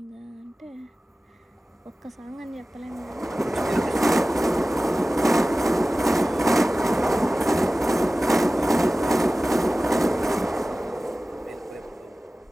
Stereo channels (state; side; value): normal; both; correlation 0.97